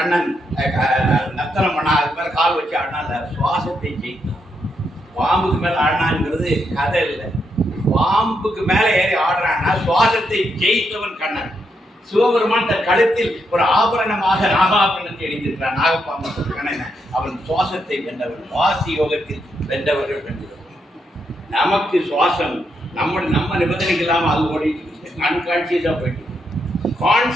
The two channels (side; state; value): both; normal; correlation 0.80